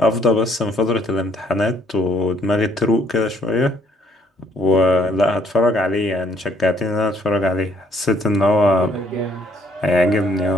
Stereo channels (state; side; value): normal; both; correlation 0.66